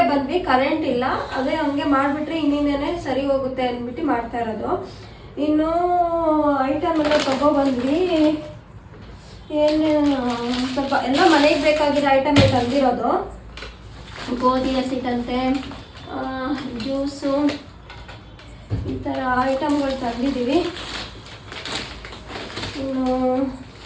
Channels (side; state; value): both; identical; correlation 1.00